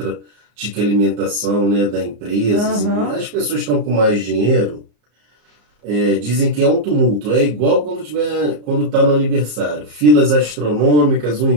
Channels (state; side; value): late; left; 34 ms